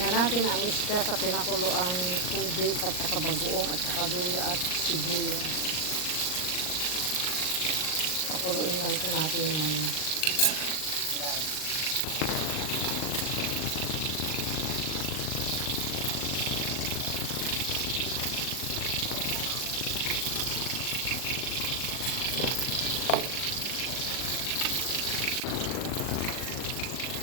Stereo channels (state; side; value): late; right; 39 ms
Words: na natin ang isda sa pinakuloang tubig at saka bagoong at saka luya at sibuyas. Pakuluin lang ito natin yung